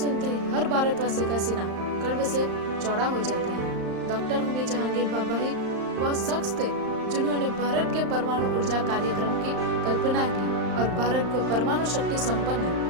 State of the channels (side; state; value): left; late; 35 ms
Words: ही हर भारतवासी का सीना गर्व से चौड़ा हो जाता है। डॉक्टर होमी जहांगीर भाभा ही वह शख्स थे जिन्होंने भारत के परमाणु ऊर्जा कार्यक्रम की कल्पना की और भारत को परमाणु शक्ति संपन्न